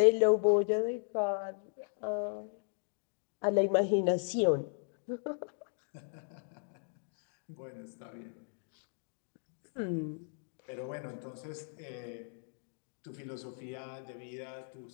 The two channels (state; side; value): silent; right; digital silence